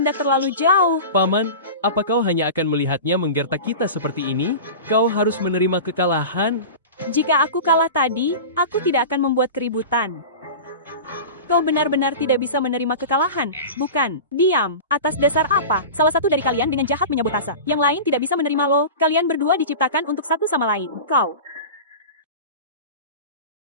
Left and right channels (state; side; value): inverted; both; correlation -0.31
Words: terlalu jauh? Paman, apa kau hanya akan melihatnya menggertak kita seperti ini? Kau harus menerima kekalahan. Jika aku kalah tadi, aku tidak akan membuat keributan. Kau benar-benar tidak bisa menerima kekalahan, bukan? Diam. Atas dasar apa? Salah satu dari kalian dengan jahat menyabotase. Yang lain tidak bisa menerima lo. Kalian berdua diciptakan untuk satu sama lain. Kau.